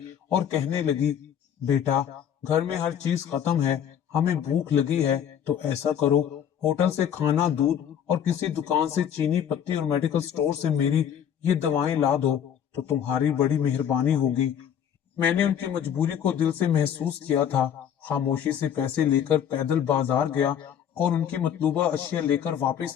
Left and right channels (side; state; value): right; quieter; 9.1 dB